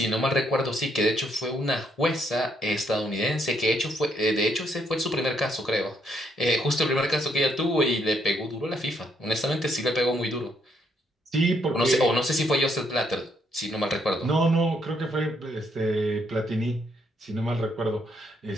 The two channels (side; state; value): both; normal; correlation 0.73